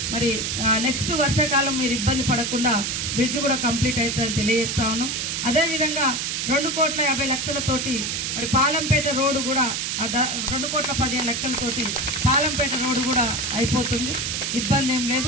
మరి నెక్స్ట్ వర్షాకాలం మీరు ఇబ్బంది పడకుండా బ్రిడ్జ్ కూడా కంప్లీట్ అవుతుందని తెలియజేస్తా ఉన్నాం. అదేవిధంగా 2,50,00,000తోటి మరి పాలంపేట రోడ్డు కూడా 2,15,00,000తోటి పాలంపేట రోడ్డు కూడా అయిపోతుంది, ఇబ్బంది ఏం లేదు.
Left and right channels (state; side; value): noise; right; hiss, 1 dB below the sound